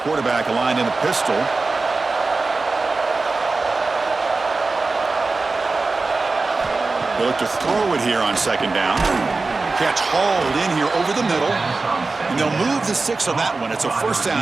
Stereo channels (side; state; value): left; quieter; 3.7 dB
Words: aligned in a pistol. They look to throw it here on second down. Catch hauled in here over the middle. And they'll move the 6 on that one. It's a first